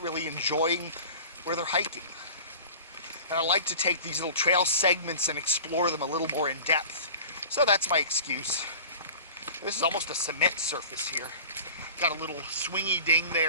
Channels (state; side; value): inverted; both; correlation -0.40